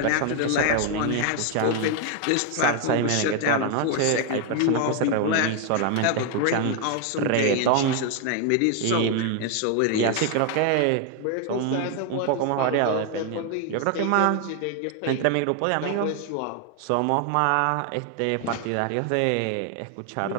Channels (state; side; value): different; both; correlation 0.01